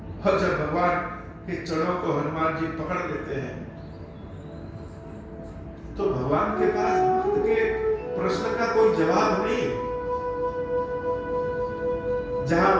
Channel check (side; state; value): both; identical; correlation 1.00